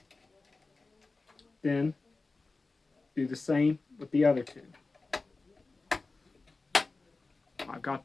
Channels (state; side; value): quieter; right; 3.6 dB